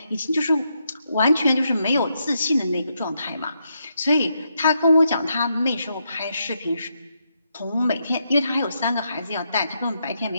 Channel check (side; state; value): both; inverted; correlation -0.80